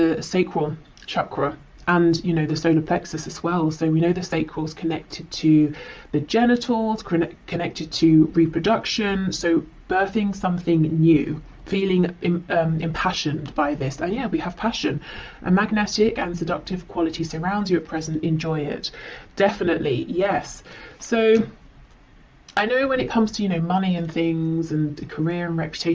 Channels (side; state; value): both; identical; correlation 1.00